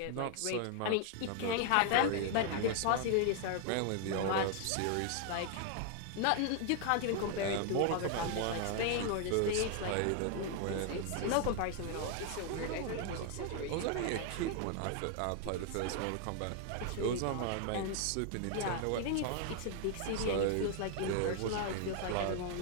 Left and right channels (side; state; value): both; different; correlation 0.00